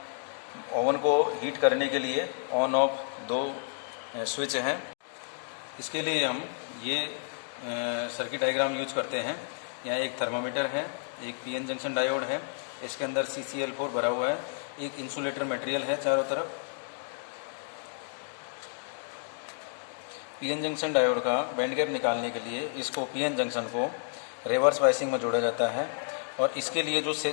ओवन को हीट करने के लिए ऑन ऑफ 2 स्विच हैं। इसके लिए हम ये सर्किट डायग्राम यूज करते हैं। यहाँ एक थर्मामीटर है, एक पीएन जंक्शन डायोड है, इसके अंदर CCl4 भरा हुआ है, एक इंसुलेटर मटेरियल है चारों तरफ। पीएन जंक्शन डायोड का बैंड गैप निकालने के लिए इसको पीएन जंक्शन को रिवर्स बायसिंग में जोड़ा जाता है और इसके लिए जो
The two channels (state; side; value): silent; right; digital silence